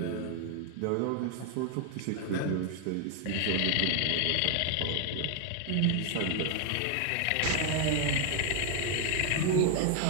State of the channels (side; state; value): both; different; correlation 0.00